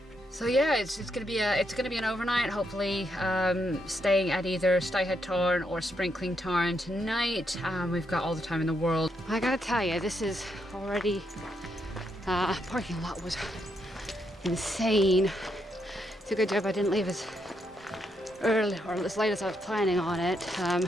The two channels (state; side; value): normal; both; correlation 0.79